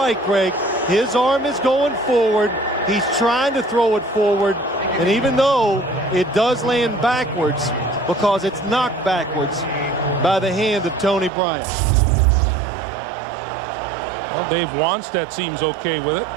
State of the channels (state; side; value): drops out; left; at 11.3 s